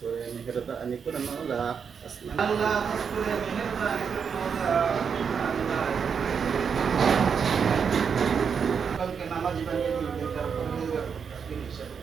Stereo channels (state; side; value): quieter; left; 6.5 dB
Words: করে মেহেরবানি করে মওলা, আল্লাহ খাস করে মেহেরবানি করে মওলা, আল্লাহ কালকে নামাজি বানিয়ে দিন, তার পরহেজগার মুত্তাকিন হিসাবে